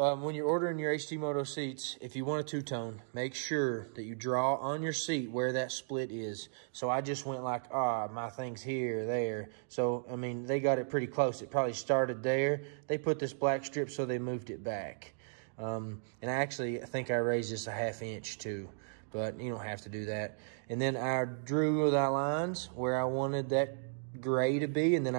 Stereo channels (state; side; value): silent; left; digital silence